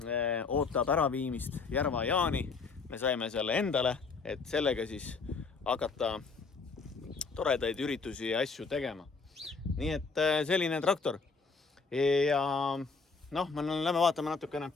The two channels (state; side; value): quieter; right; 4.7 dB